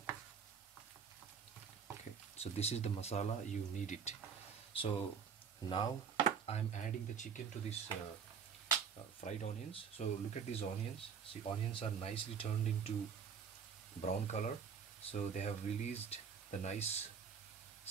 Okay, so this is the masala, you need it. So now I'm adding the chicken to this fried onions. So look at these onions. See, onions are nicely turned into brown color. So they have released the nice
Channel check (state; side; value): quieter; left; 6.7 dB